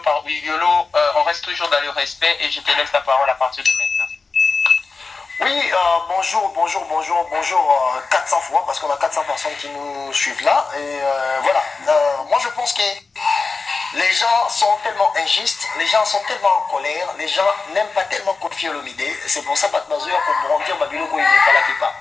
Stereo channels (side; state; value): right; quieter; 4.3 dB